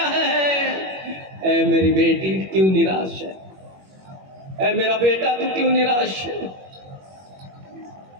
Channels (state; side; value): late; left; 21 ms